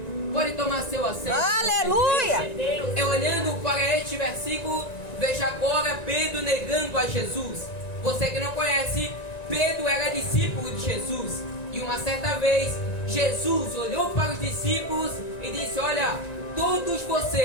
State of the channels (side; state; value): right; late; 1.9 ms